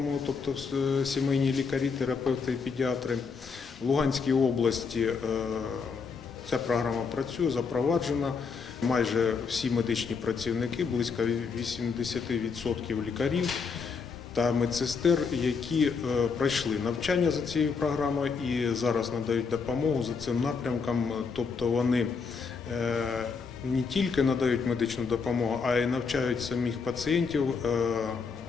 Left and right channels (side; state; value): right; quieter; 5.3 dB